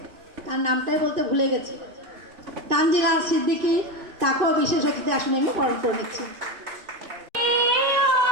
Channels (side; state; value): left; late; 2.5 ms